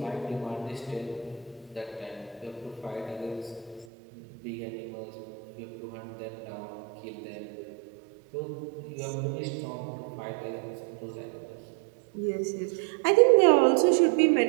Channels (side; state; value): left; drops out; at 3.9 s